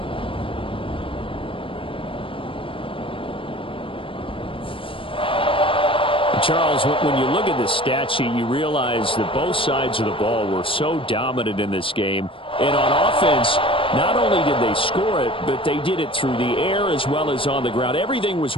Charles, when you look at the stat sheet, you realize that both sides of the ball were so dominant in this game. And on offense, not only did they score it, but they did it through the air as well as on the ground. Everything was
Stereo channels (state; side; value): late; right; 0.25 ms